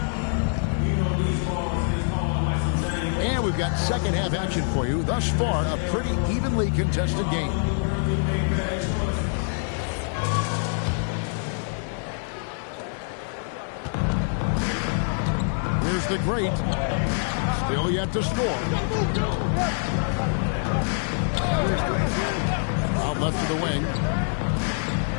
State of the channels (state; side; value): silent; right; 62 dB below the other